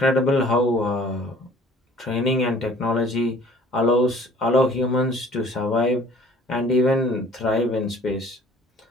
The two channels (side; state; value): both; normal; correlation 0.53